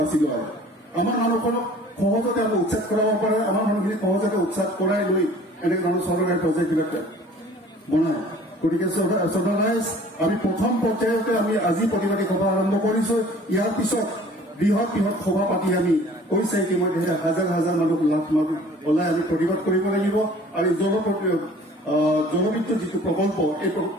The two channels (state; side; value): normal; both; correlation 0.50